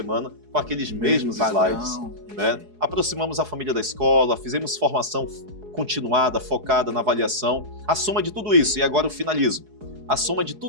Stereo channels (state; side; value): late; left; 4.7 ms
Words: com aqueles mesmos slides, né? Aproximamos a família da escola, fizemos formação continuada, focada na avaliação. A soma de tudo isso, e agora eu finalizo, a soma de